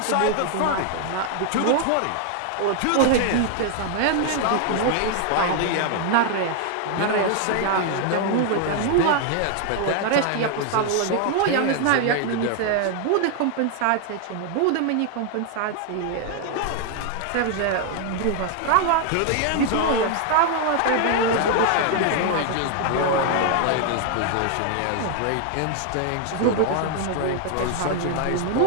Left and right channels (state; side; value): different; both; correlation 0.00